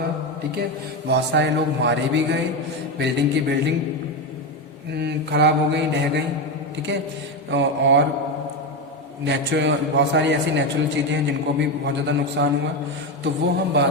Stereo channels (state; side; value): normal; both; correlation 0.13